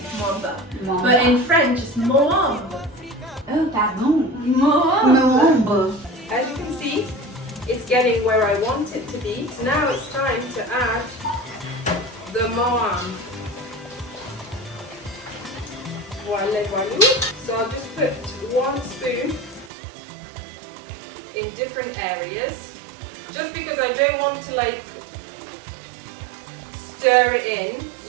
Moamba. Moambe. But in French, it's Moambe. Oh, pardon. Moambe. Moambe. As you can see, it's getting where I want it to be. So now it's time to add the Moambe. Voila, voila. So I'll just put 1 spoon in different areas, just because I don't want to like stir it in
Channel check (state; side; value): drops out; left; at 19.7 s